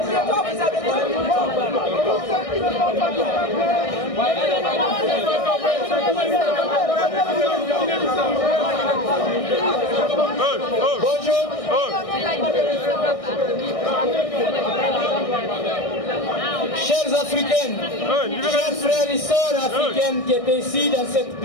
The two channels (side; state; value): right; late; 1.6 ms